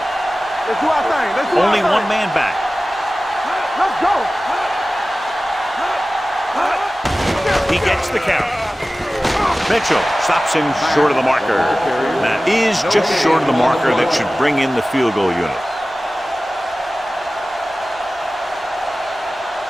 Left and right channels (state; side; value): normal; both; correlation 0.96